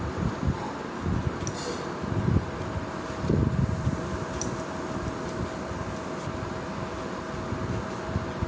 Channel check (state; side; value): identical; both; correlation 1.00